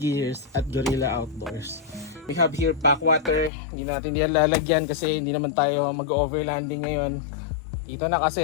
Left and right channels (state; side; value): drops out; right; at 3.5 s